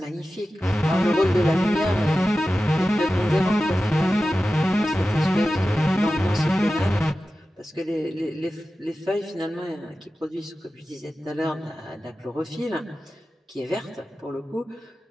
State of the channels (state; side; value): normal; both; correlation 0.94